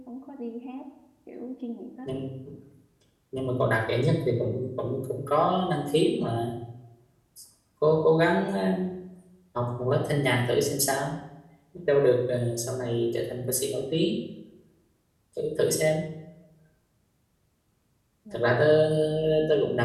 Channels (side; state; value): both; identical; correlation 1.00